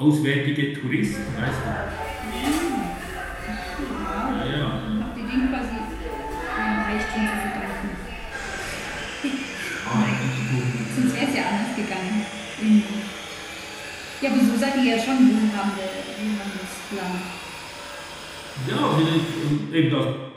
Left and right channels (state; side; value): identical; both; correlation 1.00